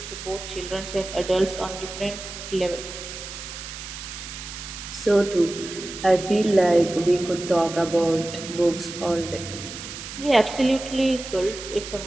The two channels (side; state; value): right; noise; hiss, 10 dB below the sound